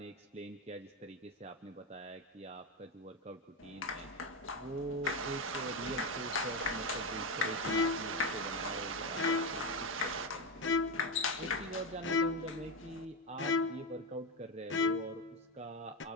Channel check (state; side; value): normal; both; correlation 0.12